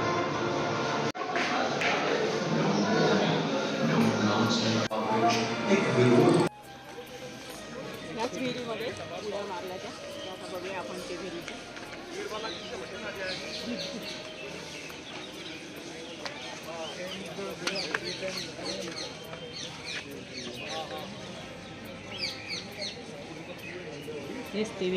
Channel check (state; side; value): identical; both; correlation 1.00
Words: याच विहिरीमध्ये उड्या मारल्या त्या, आता बघूया आपण ते विहिरीचं. हेच ती